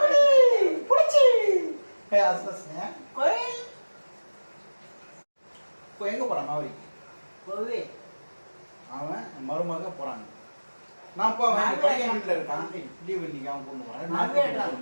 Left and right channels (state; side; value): inverted; both; correlation -1.00